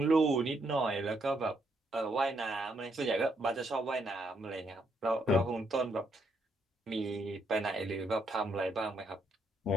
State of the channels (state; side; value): normal; both; correlation 0.75